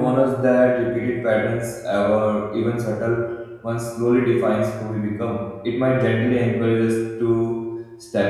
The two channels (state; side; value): identical; both; correlation 1.00